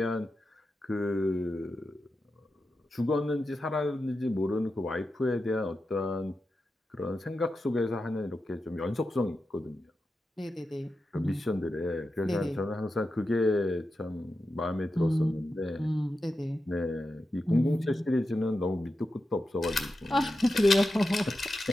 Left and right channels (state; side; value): normal; both; correlation 0.90